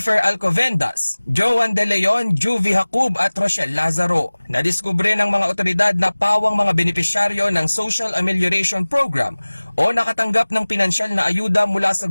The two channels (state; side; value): inverted; both; correlation -1.00